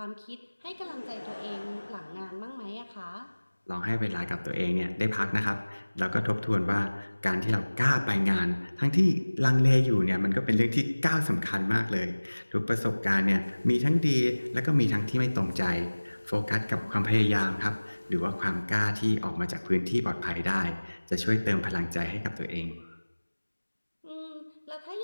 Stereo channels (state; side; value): inverted; both; correlation -1.00